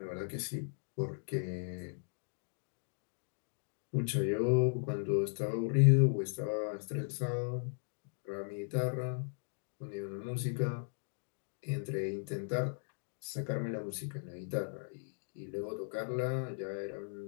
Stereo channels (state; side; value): silent; right; digital silence